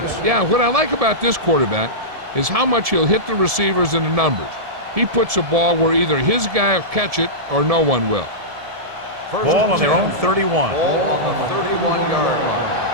Yeah, what I like about this quarterback is how much he'll hit the receivers in the numbers. He puts a ball where either his guy will catch it or no one will. Ball on their own 31. Ball on the 31-yard line.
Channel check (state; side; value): late; left; 1.7 ms